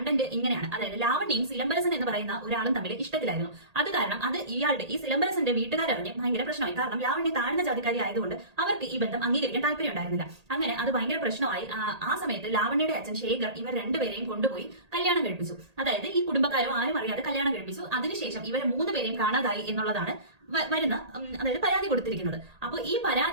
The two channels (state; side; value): late; left; 1.8 ms